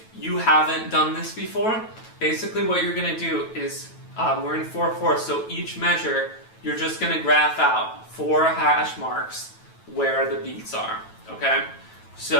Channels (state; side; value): late; right; 9.1 ms